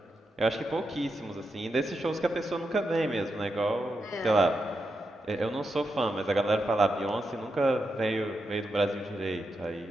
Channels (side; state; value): both; normal; correlation 0.86